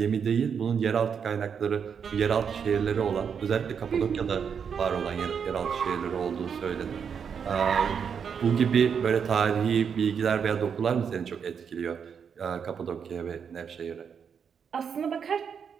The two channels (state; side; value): quieter; left; 7.0 dB